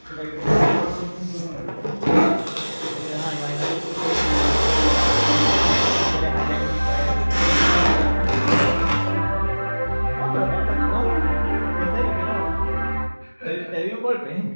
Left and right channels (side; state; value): both; inverted; correlation -1.00